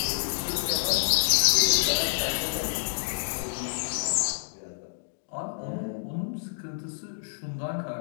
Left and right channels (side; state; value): right; silent; digital silence